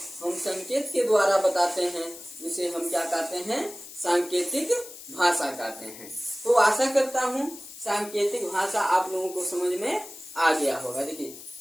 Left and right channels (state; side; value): noise; left; hiss, 15 dB below the sound